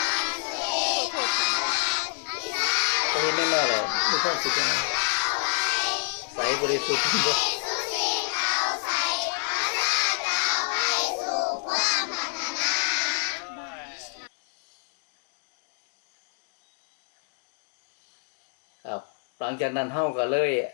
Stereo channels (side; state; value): right; silent; 60 dB below the other